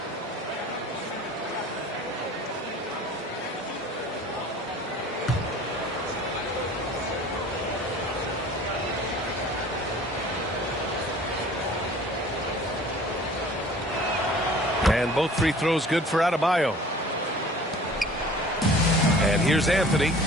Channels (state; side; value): normal; both; correlation 0.47